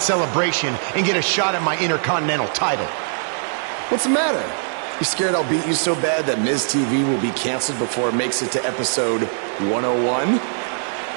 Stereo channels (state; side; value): silent; left; 65 dB below the other